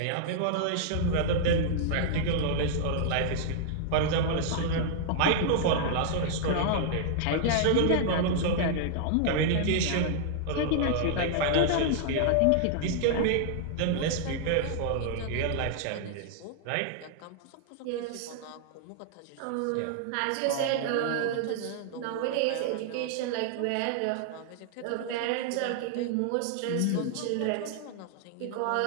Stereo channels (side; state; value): both; different; correlation -0.01